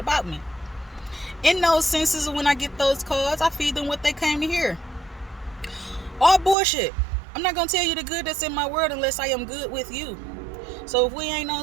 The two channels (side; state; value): left; drops out; at 6.6 s